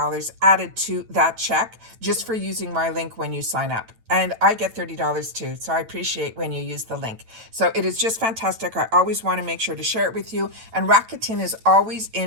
added to that check just for using my link when you sign up. And I get $30 too. So I appreciate when you use the link. So it is just fantastic. I always want to make sure to share it with you. And Rakuten is always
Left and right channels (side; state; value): left; late; 9.0 ms